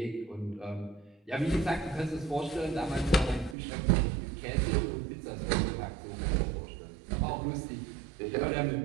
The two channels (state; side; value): drops out; left; at 3.6 s